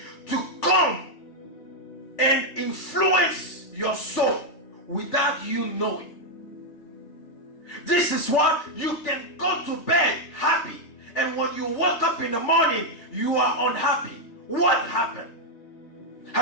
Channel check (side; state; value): right; late; 3.4 ms